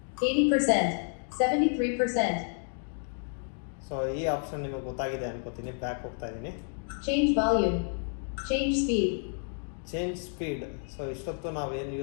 80%. 73%. ಸೊ ಈ ಆಪ್ಷನ್ ನಿಮಗೆ ಗೊತ್ತಾಗಿದೆ ಅನ್ಕೋತೀನಿ. ಬ್ಯಾಕ್ ಹೋಗ್ತಾ ಇದ್ದೀನಿ. Change volume. Change speed. Change speed. So ಇಷ್ಟೊತ್ತು ನಾವು ಏನು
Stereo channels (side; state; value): right; silent; 56 dB below the other